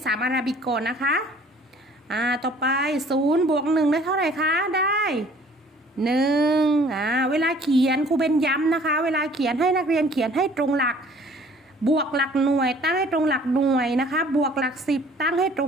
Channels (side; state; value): both; normal; correlation 0.54